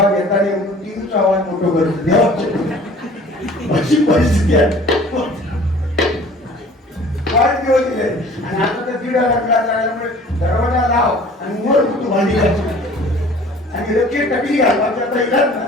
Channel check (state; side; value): normal; both; correlation 0.48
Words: येताना म्हणून टीव्हीचा आवाज मोठं करतो देवाची. अशी परिस्थिती आहे. फार दिवस दिले आणि आता तर दीड लागला झाल्यामुळे दरवाजा लाव आणि वर तू भांडी घालतो आणि लक्ष्य टकली घाल. आता इलाज ना,